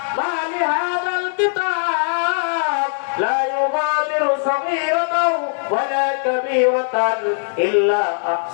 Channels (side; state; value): right; silent; digital silence